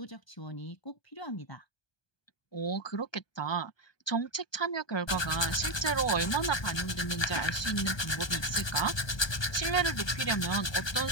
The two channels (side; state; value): right; late; 1.3 ms